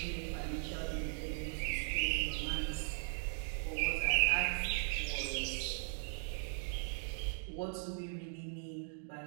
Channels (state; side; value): silent; left; digital silence